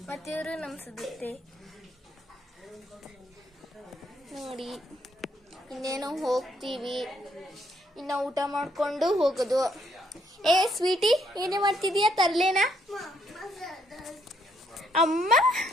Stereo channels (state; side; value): normal; both; correlation 0.72